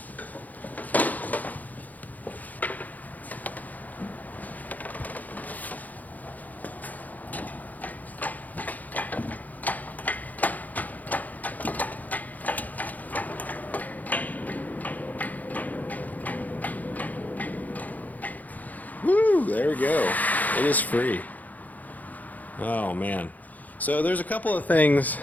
Woo, there we go. It is free. Oh man. So there's a couple of things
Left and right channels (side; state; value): right; late; 0.080 ms